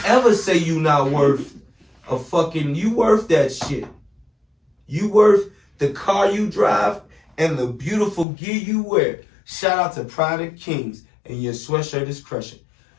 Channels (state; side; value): drops out; right; at 8.2 s